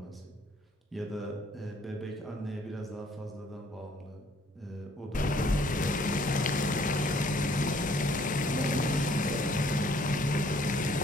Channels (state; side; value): normal; both; correlation 0.62